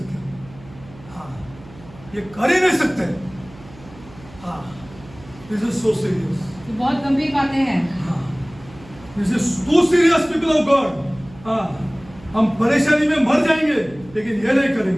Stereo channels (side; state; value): right; noise; hum, 21 dB below the sound